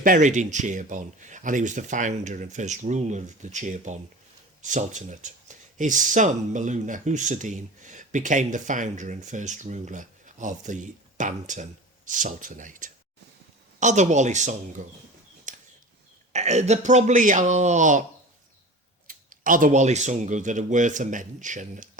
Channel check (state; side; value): normal; both; correlation 0.35